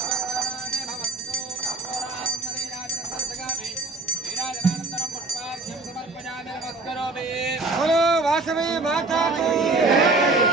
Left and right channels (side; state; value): left; quieter; 3.3 dB